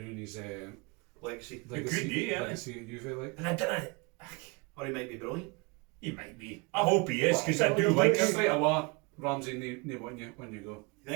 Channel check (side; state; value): left; quieter; 29.5 dB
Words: his Legacy. legacy, could do, yeah. legacy at Juve. Like. And I didn't. Or he might be brilliant. He might be. I hope he is, because I do Well, like it's him. Straight away, Ramsey, when you go. You